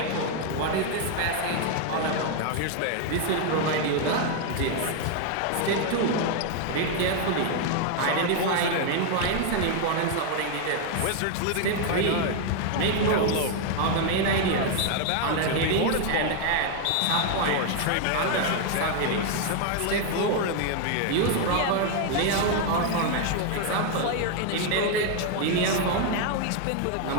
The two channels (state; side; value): different; both; correlation 0.01